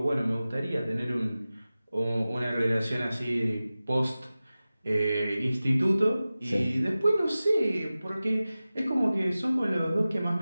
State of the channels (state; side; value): inverted; both; correlation -0.96